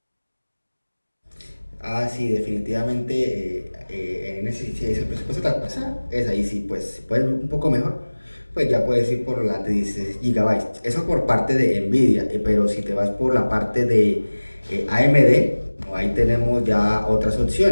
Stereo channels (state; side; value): inverted; both; correlation -1.00